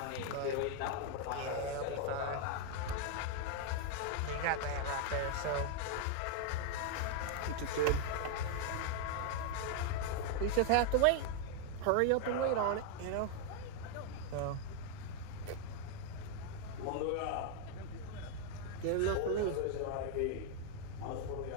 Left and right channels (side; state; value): both; different; correlation 0.00